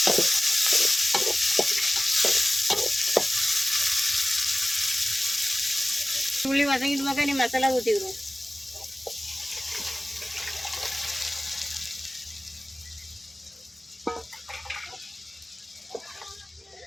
உள்ளி வதங்கிட்டு மக்கா நீ மசாலா ஊற்றிக்கிடுவோம்.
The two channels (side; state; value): both; normal; correlation 0.96